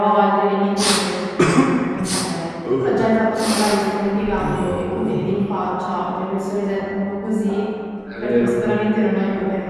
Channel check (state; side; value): identical; both; correlation 1.00